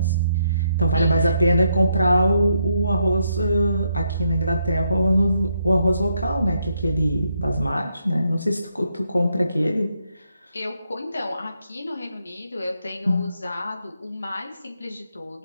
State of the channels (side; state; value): both; inverted; correlation -0.77